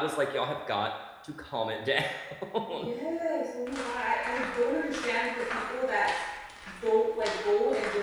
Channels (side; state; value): both; identical; correlation 1.00